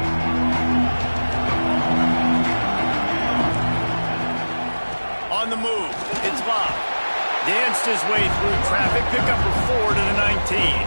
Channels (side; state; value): both; inverted; correlation -1.00